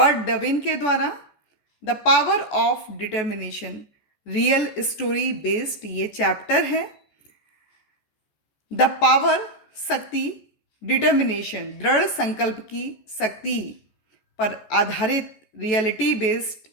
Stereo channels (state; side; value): late; right; 14 ms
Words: डविन के द्वारा। The power of determination real story based ये चैप्टर है। द पावर शक्ति, डिटर्मिनेशन दृढ़ संकल्प की शक्ति पर आधारित रियलिटी बेस्ड